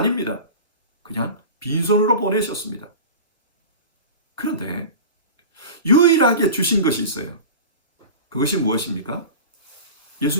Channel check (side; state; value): both; inverted; correlation -0.33